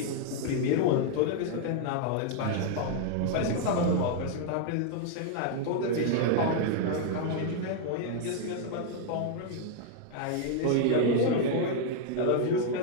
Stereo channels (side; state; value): both; different; correlation 0.00